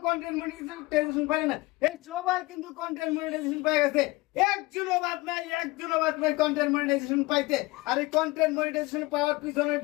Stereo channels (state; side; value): quieter; right; 21.9 dB